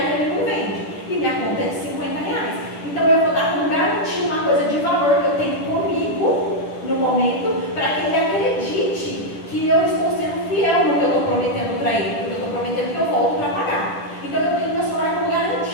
ele não vende. E minha conta é de R$50. Então eu vou dar como garantia uma coisa de valor que eu tenho comigo no momento, para que ele acredite que eu estou sendo fiel no que eu estou prometendo para ele, porque eu estou prometendo que eu volto para pagar. Então eu tenho meu celular como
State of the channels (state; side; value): late; right; 10 ms